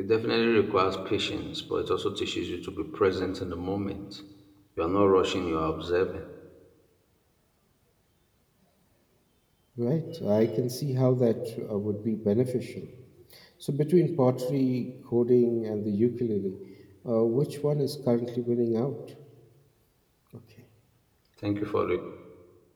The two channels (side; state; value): both; identical; correlation 1.00